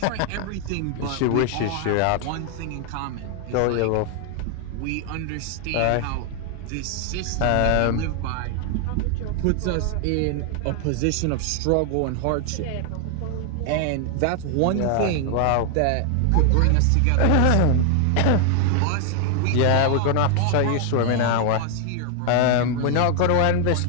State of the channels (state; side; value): different; both; correlation 0.00